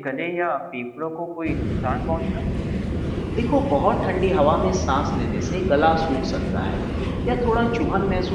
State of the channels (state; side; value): identical; both; correlation 1.00